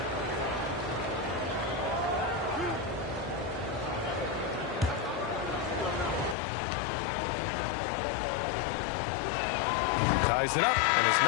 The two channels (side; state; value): right; drops out; at 6.4 s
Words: Ties it up, and his